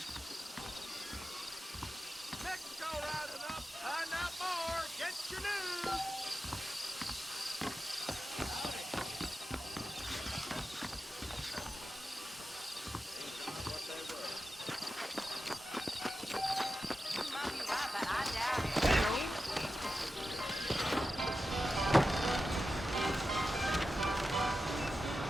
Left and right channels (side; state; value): both; normal; correlation 0.92